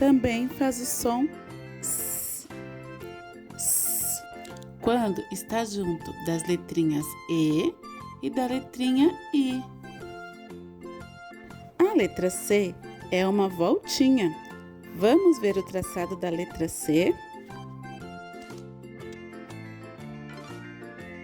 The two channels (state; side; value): identical; both; correlation 1.00